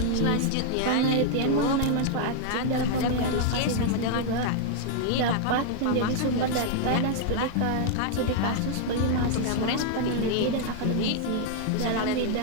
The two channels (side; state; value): both; different; correlation 0.00